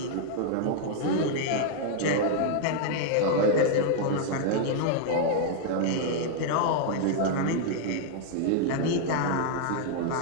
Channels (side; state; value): both; different; correlation -0.01